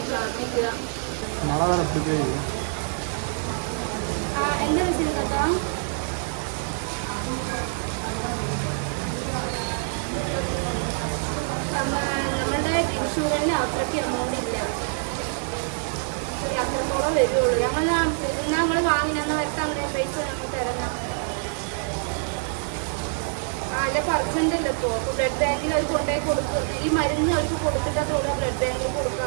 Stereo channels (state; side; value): silent; left; 58 dB below the other